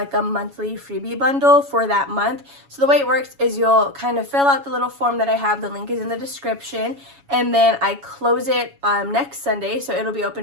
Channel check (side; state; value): left; late; 7.2 ms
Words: a monthly freebie bundle for that month. So the way it works is you'll kind of fill out the little form that I have. The link is in the description. And then I close it next Sunday. So it'll be